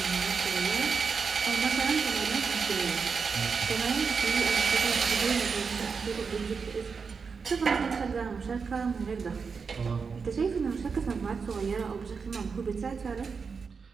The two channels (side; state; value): left; quieter; 5.4 dB